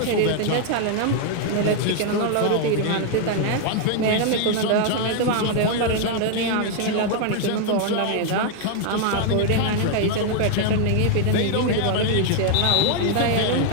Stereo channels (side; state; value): both; different; correlation 0.00